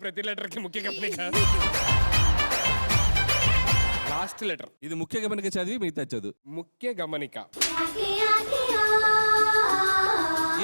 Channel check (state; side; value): inverted; both; correlation -1.00